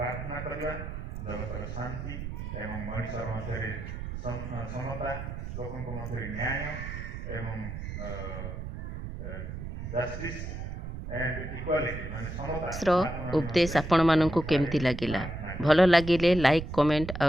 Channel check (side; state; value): right; noise; rumble, 7 dB below the sound